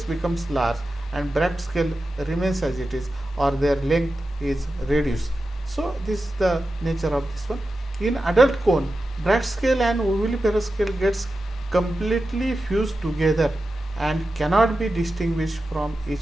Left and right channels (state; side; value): normal; both; correlation 0.92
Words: becomes large and Bragg scale remains as it is, or their length is reduced. So this is the nature of this one. In adult cone, Bragg scale and ovuliferous scale gets completely fused together and cannot be distinguished from